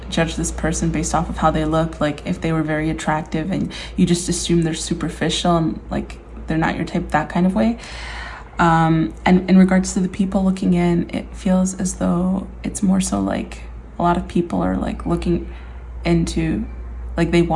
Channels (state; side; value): identical; both; correlation 1.00